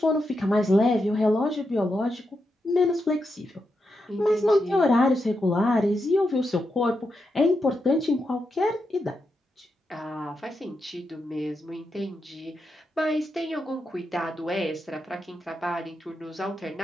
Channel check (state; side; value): normal; both; correlation 0.85